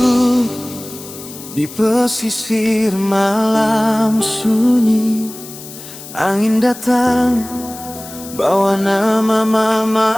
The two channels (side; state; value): left; noise; hiss, 15 dB below the sound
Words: di pesisir malam sunyi. Angin datang bawa nama mama